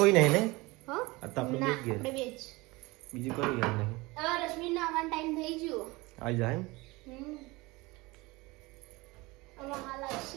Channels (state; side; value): quieter; left; 23.0 dB